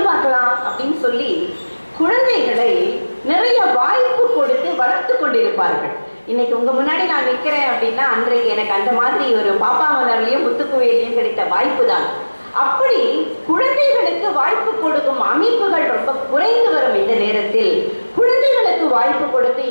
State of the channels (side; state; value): both; inverted; correlation -1.00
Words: பார்க்கலாம் அப்படின்னு சொல்லி குழந்தைகளை நிறைய வாய்ப்பு கொடுத்து வளர்த்து கொண்டிருப்பார்கள். இன்னைக்கு உங்க முன்னாடி நான் நிற்கிறேன் அப்படின்னா அன்றைக்கு எனக்கு அந்த மாதிரி ஒரு பாப்பா மலர்லையும் முத்துக்குவையிலையும் கிடைத்த வாய்ப்பு தான். அப்படி குழந்தைகளுக்கு வாய்ப்பு கொடுக்கும் அமைப்புகள் ரொம்ப குறைந்து வரும் இந்த நேரத்தில் குழந்தைகளுக்கு வாய்ப்பு கொடுத்து